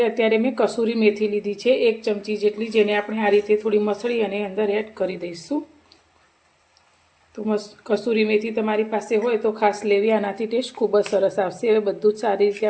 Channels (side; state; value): both; identical; correlation 1.00